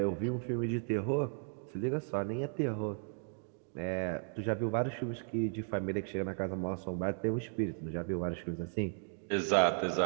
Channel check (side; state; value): left; silent; 54 dB below the other